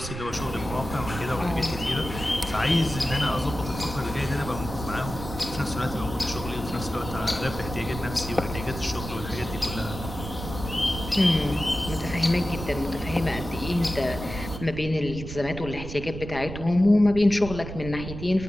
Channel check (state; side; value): noise; right; rumble, 9 dB below the sound